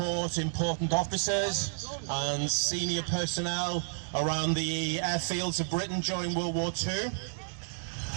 important officers and senior personnel around the airfields of Britain during World War II.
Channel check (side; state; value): left; silent; digital silence